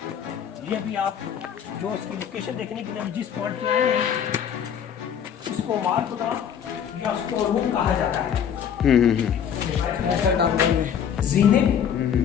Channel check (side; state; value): right; quieter; 8.4 dB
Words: ये भी आप जो इसकी लोकेशन देखने के लिए जिस पॉइंट पे आए हैं, इसको मारकुदा या स्टोर रूम कहा जाता है। जीने,